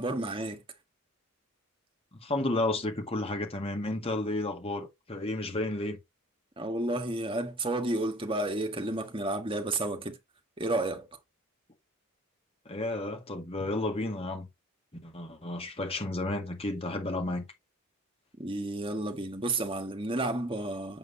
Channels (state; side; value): normal; both; correlation 0.51